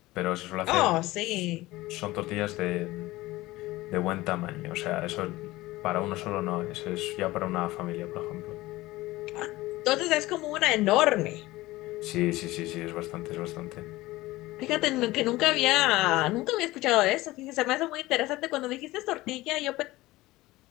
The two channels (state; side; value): quieter; right; 18.6 dB